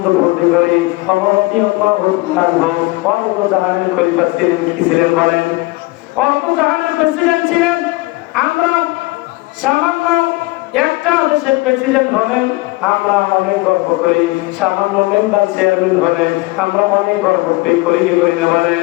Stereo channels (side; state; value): right; quieter; 22.3 dB